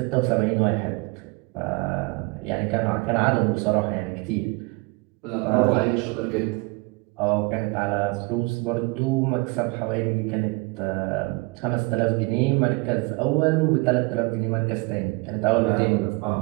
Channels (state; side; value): quieter; left; 27.2 dB